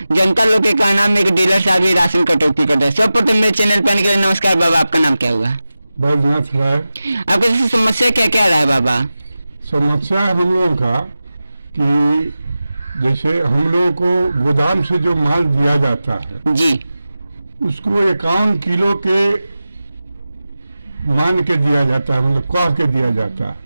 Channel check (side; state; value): both; inverted; correlation -0.95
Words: जनता लोग के कहना है कि डीलर साहब ही राशन कटौती करते हैं। सब प्रथम मेरे चैनल पर आने के लिए नमस्कार। बाबा, आपका नाम क्या हुआ? बैजनाथ राय। आपका जैसे समस्या क्या क्या रहा है बाबा? समस्या हम लोगों का कि जैसे हम लोगों को गोदाम से जो माल दिया जाता है जी, उसको 51 किलो के मान के दिया जाता है, मतलब कह के दिया जाता है।